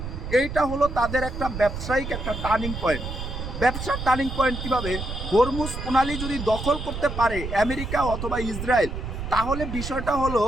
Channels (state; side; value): noise; right; rumble, 6 dB below the sound